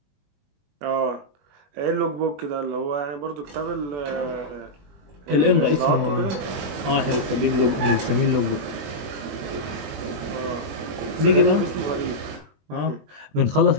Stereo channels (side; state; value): left; late; 21 ms